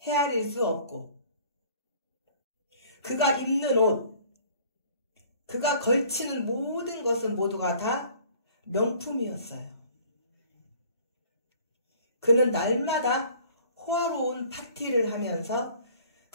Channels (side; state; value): both; inverted; correlation -0.53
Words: 헤아릴 수 없고, 그가 입는 옷, 그가 걸치는 모든 것은 모두가 다 명품이었어요. 그는 날마다 호화로운 파티를 하면서